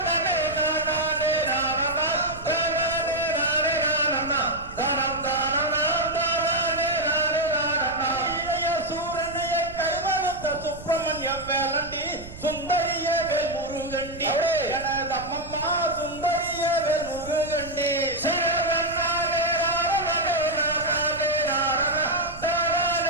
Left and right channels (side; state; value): right; noise; rumble, 15 dB below the sound